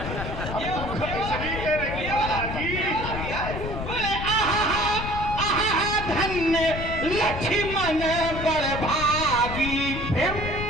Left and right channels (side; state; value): left; noise; rumble, 6 dB below the sound